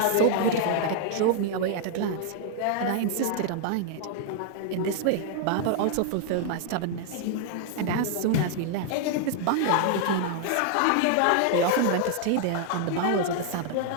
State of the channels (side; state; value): both; different; correlation 0.00